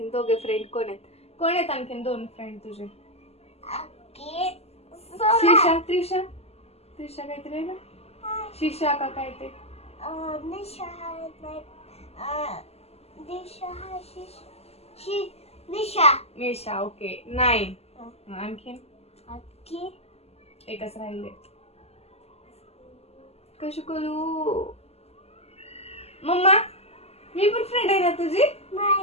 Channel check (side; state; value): right; late; 0.30 ms